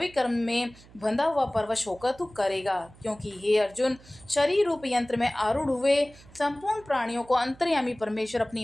कर्म में बंधा हुआ परवश होकर तू करेगा, क्योंकि हे अर्जुन, शरीर रूप यंत्र में आरूढ़ हुए संपूर्ण प्राणियों को अंतर्यामी परमेश्वर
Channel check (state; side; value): noise; right; hum, 24 dB below the sound